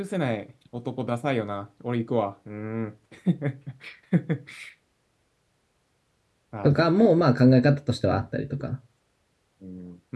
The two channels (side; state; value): both; identical; correlation 1.00